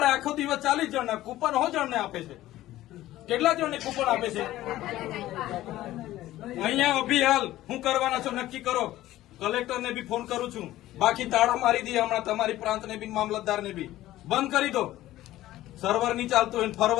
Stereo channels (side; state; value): right; quieter; 15.2 dB